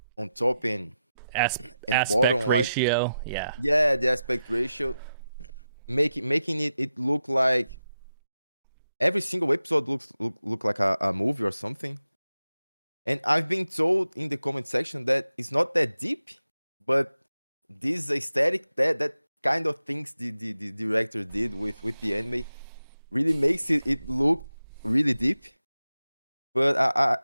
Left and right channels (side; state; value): both; inverted; correlation -0.91